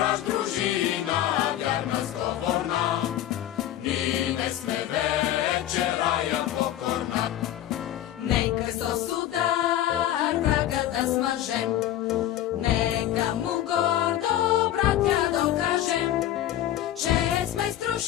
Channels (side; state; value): right; quieter; 12.5 dB